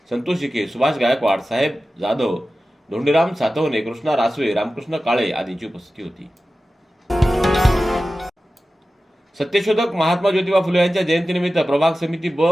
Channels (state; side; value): normal; both; correlation 0.95